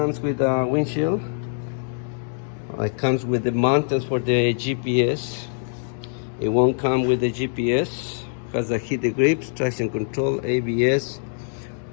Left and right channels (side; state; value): right; silent; digital silence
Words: with a windshield. It comes with the mountains for the GPS. It won't come with the GPS. Has a heated grips, traction control, ABS.